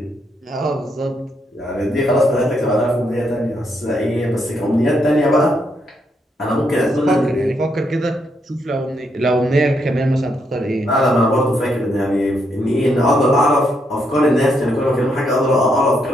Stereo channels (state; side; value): normal; both; correlation 0.77